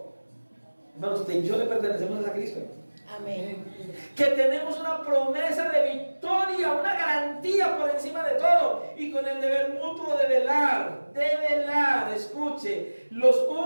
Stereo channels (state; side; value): inverted; both; correlation -1.00